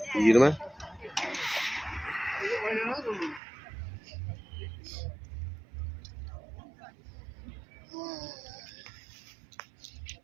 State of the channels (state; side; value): drops out; left; at 3.4 s